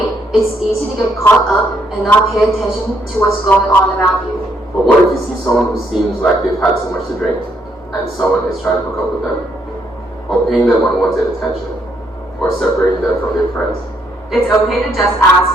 it's easy to get caught up and not pay attention to what's going on around you. But what if you see someone who seems like they've had so much to drink, and someone is trying to hook up with them, or paying them unwanted attention, or separating them from their friends? It's okay to just ask,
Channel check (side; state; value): both; normal; correlation 0.73